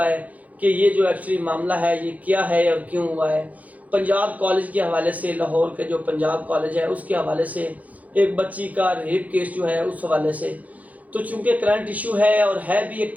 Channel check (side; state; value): left; late; 0.075 ms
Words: ہے کہ یہ جو ایکچولی معاملہ ہے یہ کیا ہے اور کیوں ہوا ہے۔ پنجاب کالج کے حوالے سے، لاہور کے جو پنجاب کالج ہے اس کے حوالے سے ایک بچی کا ریپ کیس جو ہے اس حوالے سے، تو چونکہ کرنٹ ایشو ہے اور ہے بھی ایک